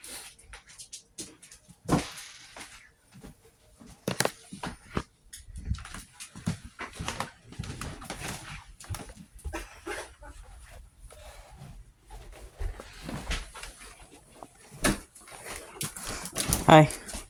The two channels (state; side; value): identical; both; correlation 1.00